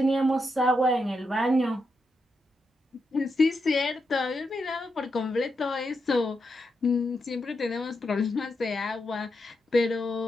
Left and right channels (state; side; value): normal; both; correlation 0.85